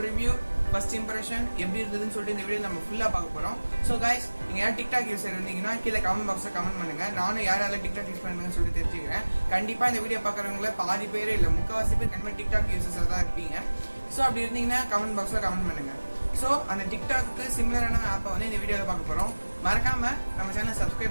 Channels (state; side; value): inverted; both; correlation -1.00